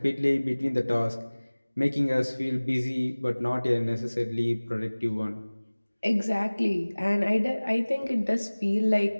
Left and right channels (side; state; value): both; inverted; correlation -1.00